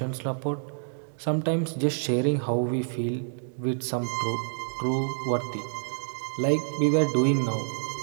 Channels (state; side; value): silent; left; digital silence